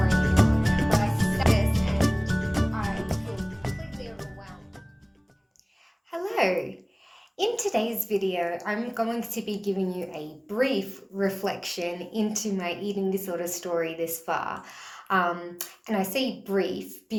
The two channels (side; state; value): both; identical; correlation 1.00